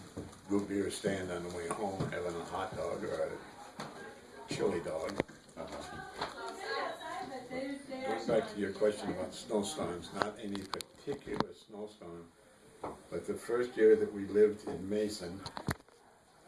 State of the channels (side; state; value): both; identical; correlation 1.00